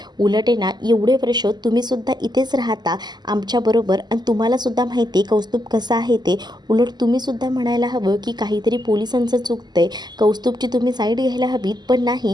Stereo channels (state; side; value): late; left; 0.21 ms